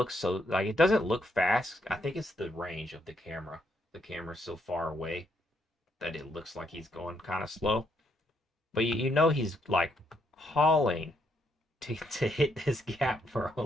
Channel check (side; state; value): both; normal; correlation 0.75